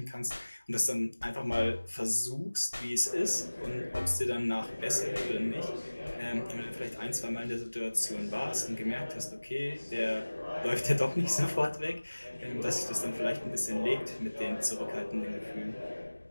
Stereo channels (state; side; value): inverted; both; correlation -1.00